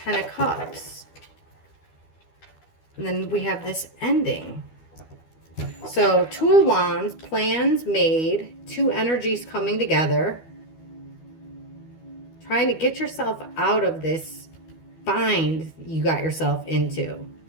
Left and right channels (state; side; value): late; right; 12 ms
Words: of Cups. And then we have this ending. So Two of Wands, plans made, two energies coming together. Trying to get yourself out of this bind you got yourself into.